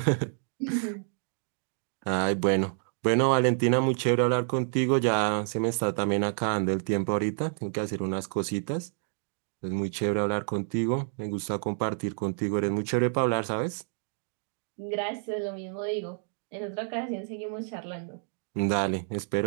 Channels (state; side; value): silent; left; digital silence